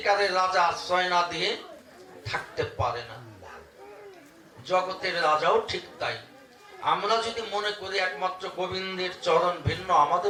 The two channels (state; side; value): identical; both; correlation 1.00